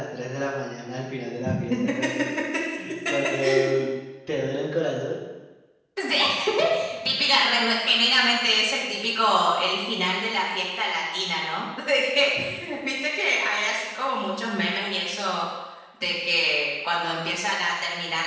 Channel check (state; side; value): identical; both; correlation 1.00